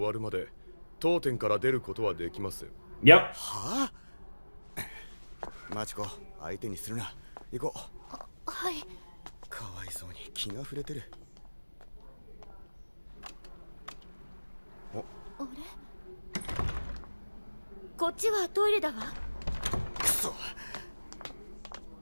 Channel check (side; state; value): both; inverted; correlation -1.00